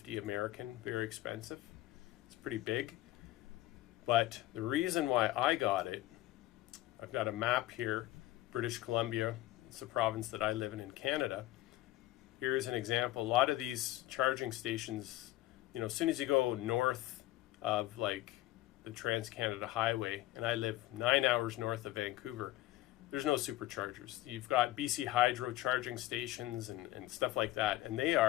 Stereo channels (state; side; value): quieter; right; 16.2 dB